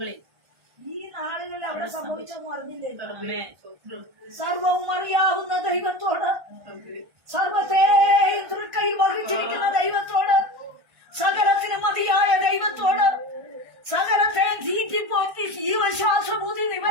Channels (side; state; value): left; late; 1.5 ms